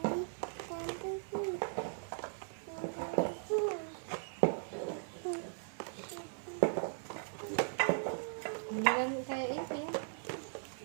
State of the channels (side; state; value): left; silent; 52 dB below the other